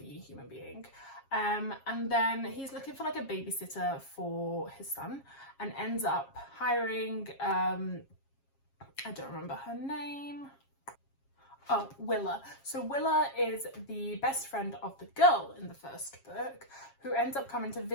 human being. And then he's looking for like a babysitter for his son and ends up hiring, I don't remember her name. Oh, Willa. So Willa is the best friend of the girl in the first book who ends up coming to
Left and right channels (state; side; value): late; right; 7.4 ms